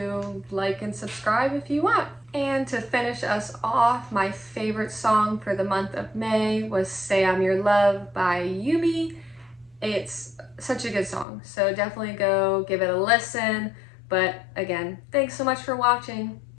like and subscribe if you want. And to finish us off, my favorite song for the month of May was Say I'm Your Love by Yumi. It's such a good song, so definitely go give it a listen. But again, thanks so much for watching.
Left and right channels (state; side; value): drops out; right; at 11.2 s